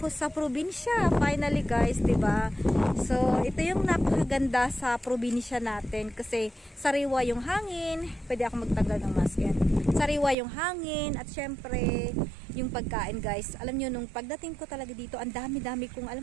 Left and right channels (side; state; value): left; drops out; at 10.4 s